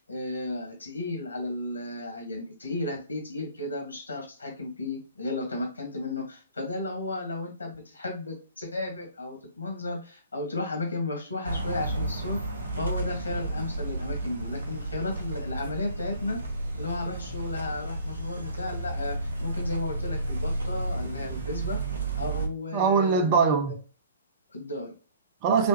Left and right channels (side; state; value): both; inverted; correlation -0.53